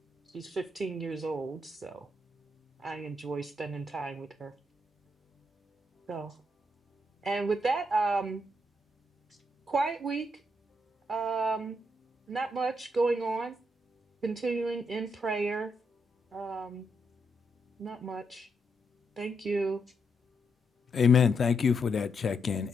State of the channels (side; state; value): both; normal; correlation 0.79